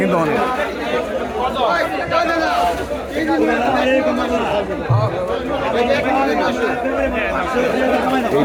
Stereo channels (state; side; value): identical; both; correlation 1.00